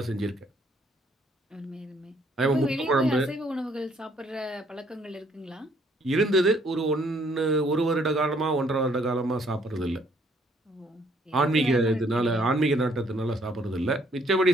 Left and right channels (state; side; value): normal; both; correlation 0.65